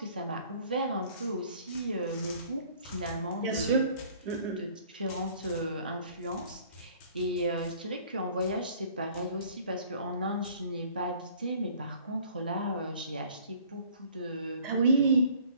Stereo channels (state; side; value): inverted; both; correlation -0.54